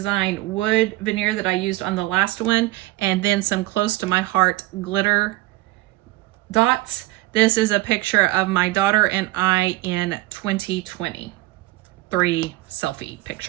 wood veneer that I used on the last one, and then some Close to My Heart glitter dots. This is a picture of my daughter and I in 2020. 3 selfie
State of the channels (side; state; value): left; quieter; 18.6 dB